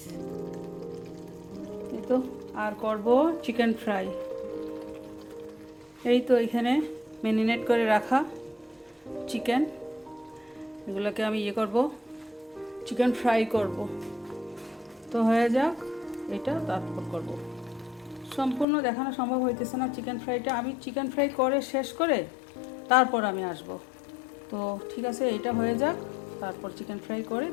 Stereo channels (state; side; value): drops out; right; at 18.7 s